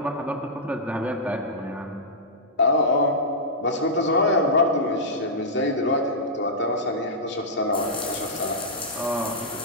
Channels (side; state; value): both; normal; correlation -0.11